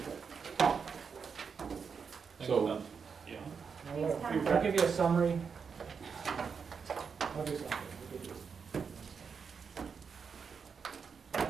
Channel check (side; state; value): left; quieter; 6.0 dB